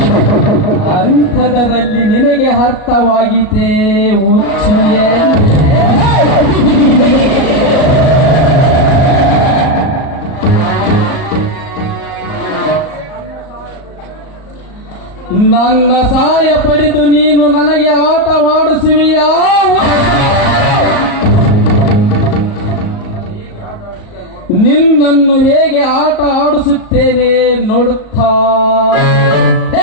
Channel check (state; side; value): late; right; 37 ms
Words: ಅಂಥದರಲ್ಲಿ ನಿನಗೆ ಅರ್ಥವಾಗಿದೆ ಹುಚ್ಚುಯೇ. ನನ್ನ ಸಹಾಯ ಪಡೆದು ನೀನು ನನಗೆ ಆಟವಾಡಿಸುವಿಯಾ? ನಿನ್ನನ್ನು ಹೇಗೆ ಆಟ ಆಡಿಸುತ್ತೇನೆ ನೋಡುತ್ತಾ.